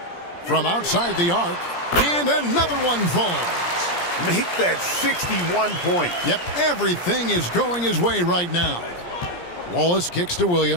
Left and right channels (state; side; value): late; right; 17 ms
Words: From outside the arc. And another one falls. Make that 61 points. Yep, everything is going his way right now. Wallace kicks to